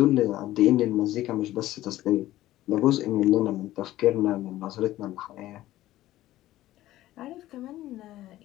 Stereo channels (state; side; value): quieter; right; 15.1 dB